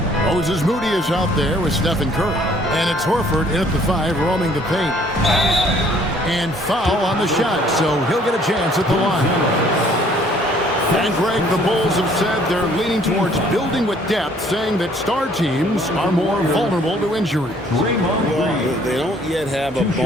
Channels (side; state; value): both; normal; correlation 0.59